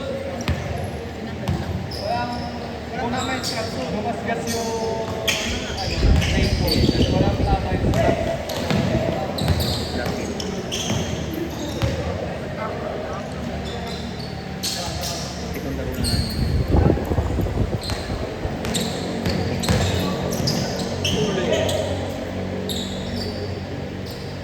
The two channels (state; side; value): identical; both; correlation 1.00